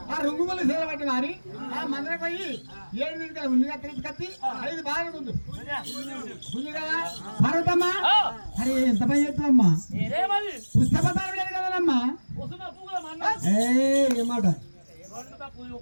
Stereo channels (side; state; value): both; inverted; correlation -1.00